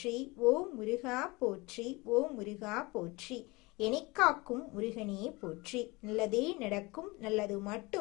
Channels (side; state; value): right; quieter; 24.2 dB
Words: ஓம் முருகா போற்றி, ஓம் முருகா போற்றி. எனிக்காக்கும் முருகனே போற்றி. நல்லதே நடக்கும், நல்லது